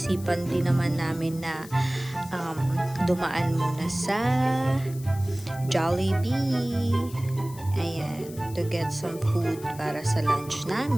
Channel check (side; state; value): left; noise; hiss, 18 dB below the sound